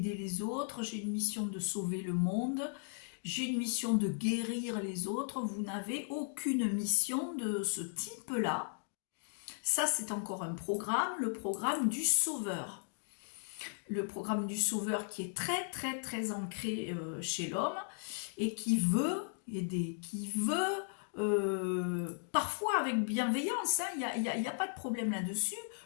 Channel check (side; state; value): right; silent; digital silence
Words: les autres, j'ai une mission de sauver le monde, j'ai une mission de guérir les autres. Vous n'avez aucune mission de ce type-là. Ça, c'est encore un programme, le programme du sauveur. Le programme du sauveur qui est très, très, très ancré chez l'homme et qui veut aider, qui veut, parfois avec bienveillance, hein, il n'y a pas de problème là-dessus.